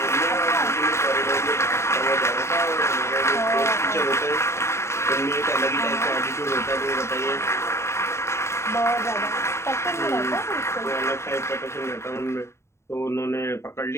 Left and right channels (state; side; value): late; right; 0.13 ms